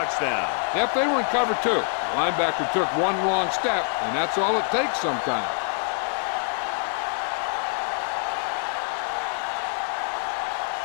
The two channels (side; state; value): right; silent; digital silence